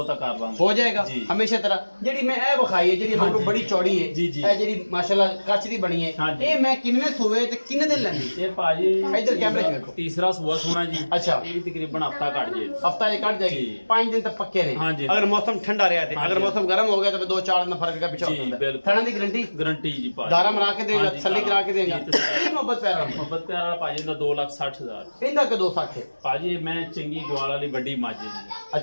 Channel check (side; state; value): both; inverted; correlation -1.00